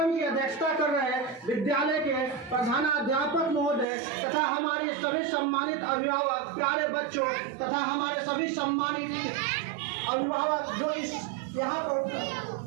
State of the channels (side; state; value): left; drops out; at 3.9 s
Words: की अध्यक्षता कर रहे विद्यालय के प्रधानाध्यापक महोदय तथा हमारे सभी सम्मानित अभिभावक, प्यारे बच्चों तथा हमारे सभी सम्मानित अभिभावक जो इस यहाँ पर